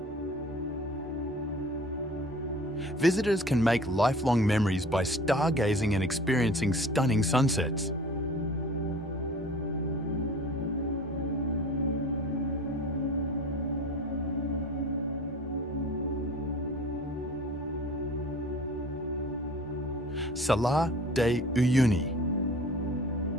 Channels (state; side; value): normal; both; correlation 0.43